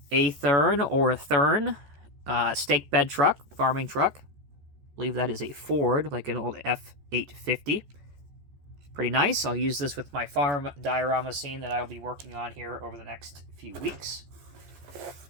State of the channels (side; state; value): left; late; 14 ms